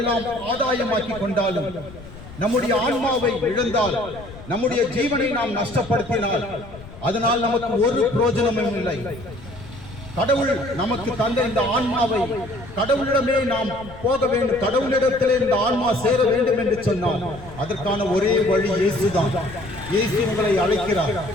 ஆதாயமாக்கி கொண்டாலும், நம்முடைய ஆன்மாவை இழந்தால், நம்முடைய ஜீவனை நாம் நஷ்டப்படுத்தினால் அதனால் நமக்கு ஒரு பிரயோஜனமும் இல்லை. கடவுள் நமக்கு தந்த இந்த ஆன்மாவை கடவுளிடமே நாம் போக வேண்டும். கடவுளிடத்திலே இந்த ஆன்மா சேர வேண்டும் என்று சொன்னால் அதற்கான ஒரே வழி இயேசுதான். இயேசு உங்களை அழைக்கிறார்.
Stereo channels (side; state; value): left; noise; rumble, 17 dB below the sound